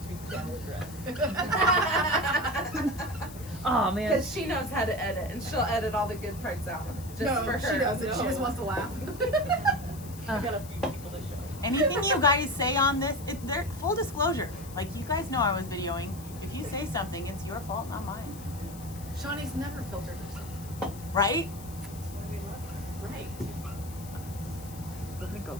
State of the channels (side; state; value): left; noise; hiss, 17 dB below the sound